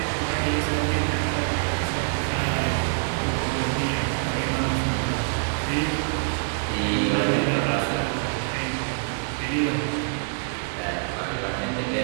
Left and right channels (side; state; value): left; silent; digital silence